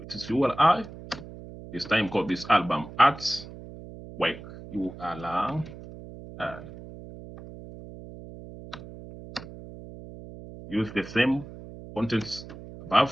is URI. This time called this album artwork URI. Use the same contents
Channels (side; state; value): right; noise; hum, 15 dB below the sound